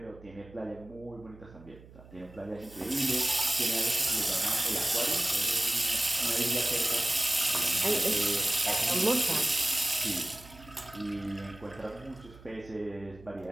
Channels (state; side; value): noise; right; hum, 21 dB below the sound